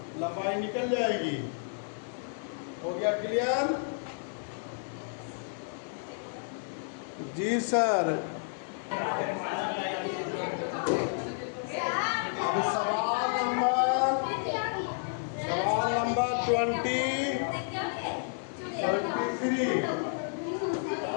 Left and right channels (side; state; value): right; silent; digital silence